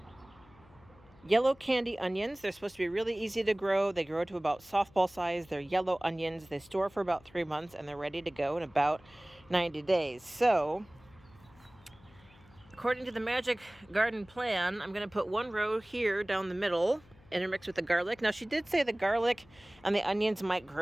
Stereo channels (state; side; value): noise; left; hum, 26 dB below the sound